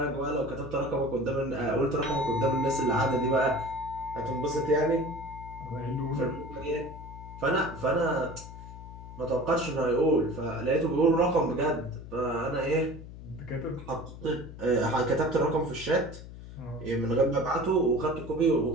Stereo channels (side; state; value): left; noise; hum, 14 dB below the sound